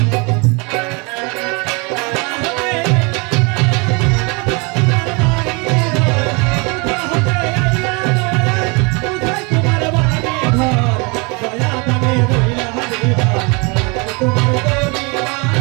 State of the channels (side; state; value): left; quieter; 30.0 dB